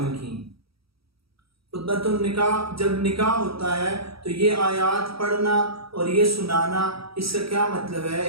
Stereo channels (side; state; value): left; late; 0.76 ms